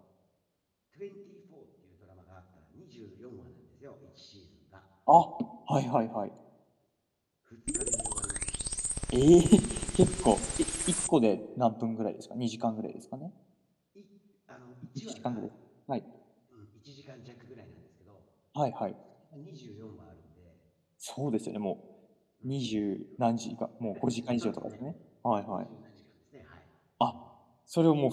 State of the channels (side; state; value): both; identical; correlation 1.00